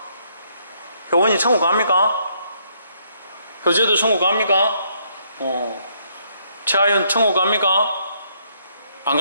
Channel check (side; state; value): both; inverted; correlation -0.71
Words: 효원이 천국 갑니까? 효재도 천국 갑니까? 최하윤 천국 갑니까? 안